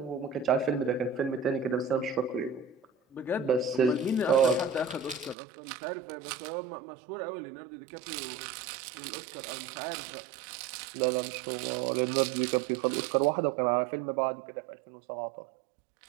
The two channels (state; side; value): drops out; left; at 5.4 s